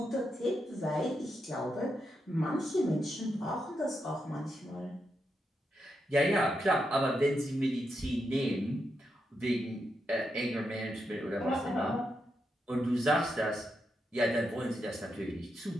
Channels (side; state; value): both; normal; correlation 0.84